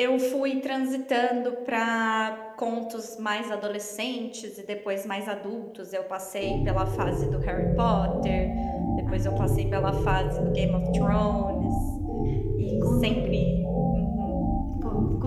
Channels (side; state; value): both; identical; correlation 1.00